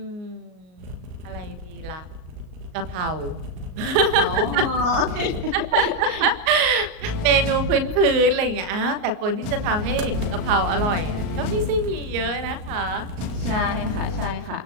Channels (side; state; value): left; late; 38 ms